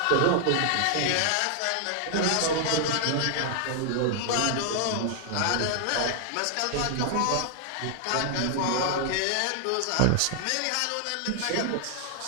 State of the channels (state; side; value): different; both; correlation 0.00